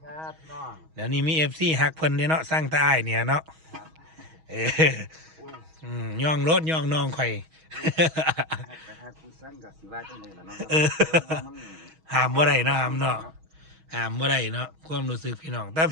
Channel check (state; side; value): late; left; 6.3 ms